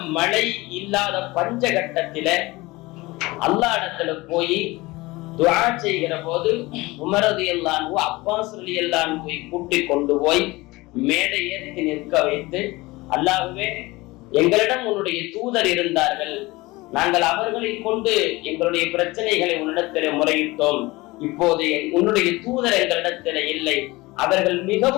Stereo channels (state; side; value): quieter; right; 21.4 dB